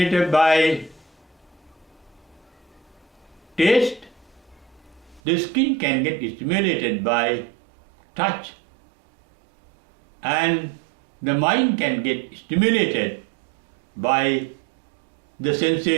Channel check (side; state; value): left; drops out; at 5.2 s